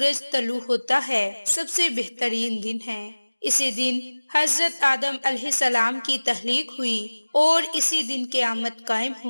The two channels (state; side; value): inverted; both; correlation -1.00